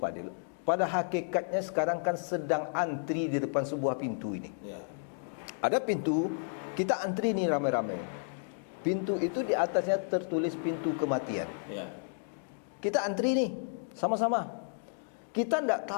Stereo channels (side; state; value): right; silent; digital silence